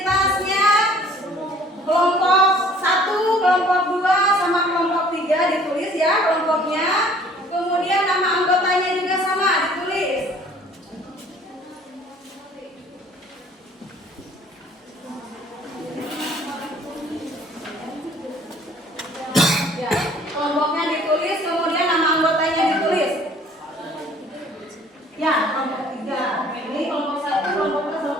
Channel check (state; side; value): normal; both; correlation 0.54